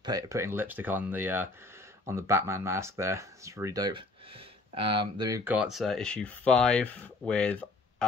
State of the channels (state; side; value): quieter; right; 3.1 dB